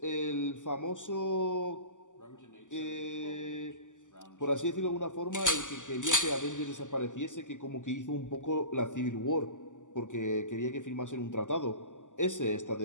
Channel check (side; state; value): right; late; 0.87 ms